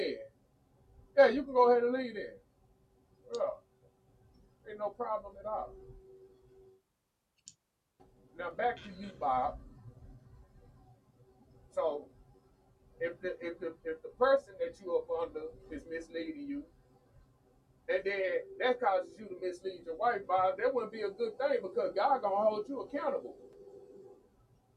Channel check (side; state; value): both; identical; correlation 1.00